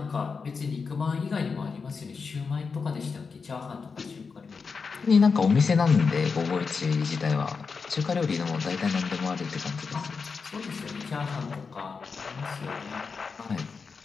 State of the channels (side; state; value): right; quieter; 5.1 dB